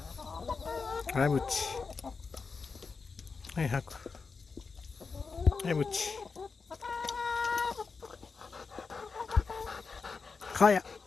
はい、ぶっち。はい、吐く。はい、ぶっち。かや。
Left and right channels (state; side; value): quieter; right; 4.8 dB